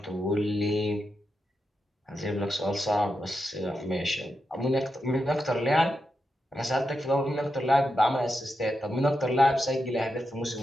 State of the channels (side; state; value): both; normal; correlation 0.87